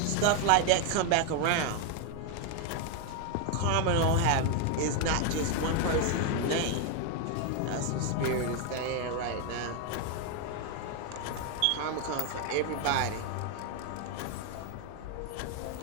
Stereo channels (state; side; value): different; both; correlation 0.01